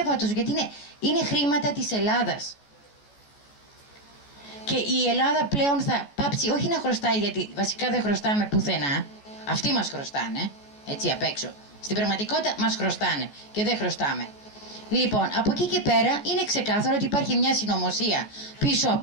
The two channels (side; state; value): right; late; 14 ms